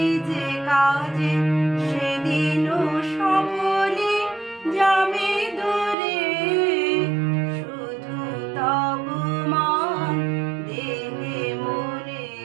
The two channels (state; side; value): drops out; left; at 6.0 s